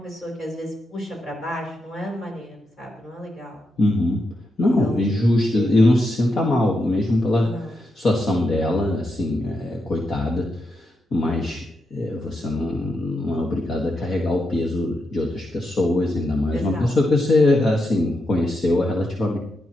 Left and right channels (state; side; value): normal; both; correlation 0.84